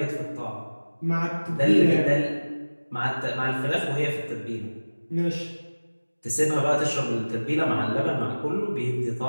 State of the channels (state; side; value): inverted; both; correlation -1.00